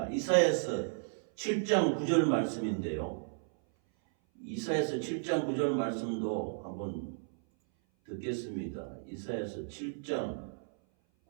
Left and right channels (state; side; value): silent; left; 55 dB below the other